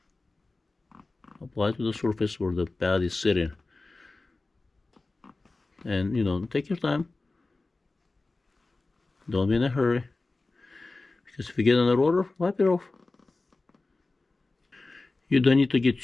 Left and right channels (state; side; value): quieter; right; 3.4 dB